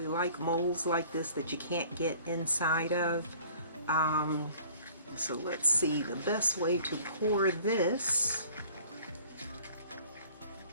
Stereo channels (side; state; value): both; inverted; correlation -0.52